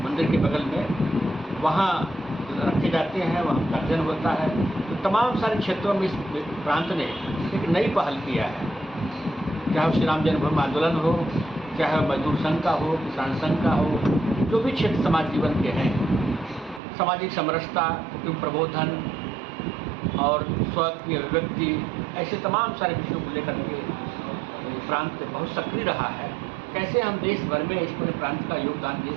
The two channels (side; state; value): left; drops out; at 16.8 s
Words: मंदिर के बगल में, वहाँ रखे जाते हैं, वहाँ उनका जन्म होता है। तो तमाम सारे क्षेत्रों में इस प्रांत ने एक नई पहल किया है, चाहे श्री राम जन्मभूमि आंदोलन हो, चाहे मजदूर संघ का हो, किसान संघ का हो, जो भी क्षेत्र समाज जीवन के हैं, सामाजिक समरसता, कुटुंब प्रबोधन और स्व की अभिव्यक्ति, ऐसे तमाम सारे विषयों को लेकर के प्रांत बहुत सक्रिय रहा है। कैसे हम देश भर में इस पूरे प्रांत का योगदान दे